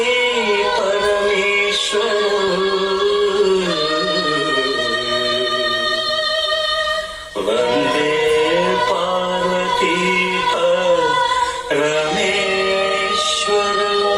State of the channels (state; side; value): identical; both; correlation 1.00